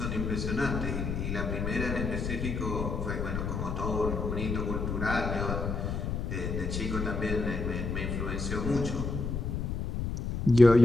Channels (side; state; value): left; noise; rumble, 2 dB below the sound